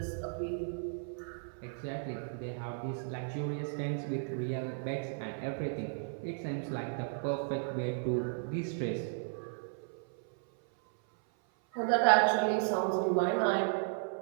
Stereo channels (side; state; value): left; silent; 55 dB below the other